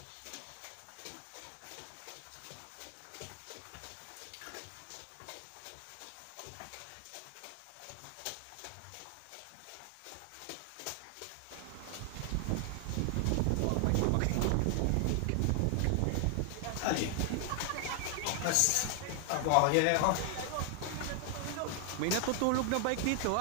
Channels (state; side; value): different; both; correlation 0.00